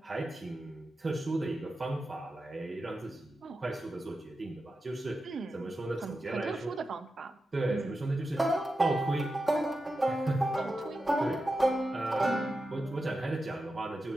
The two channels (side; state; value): both; normal; correlation 0.91